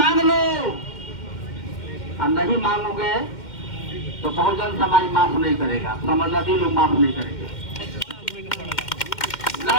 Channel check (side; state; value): right; late; 2.1 ms